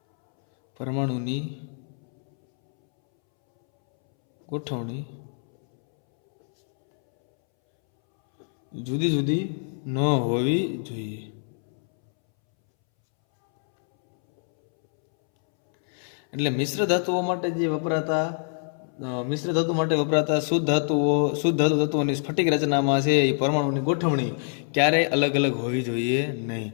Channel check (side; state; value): right; silent; 62 dB below the other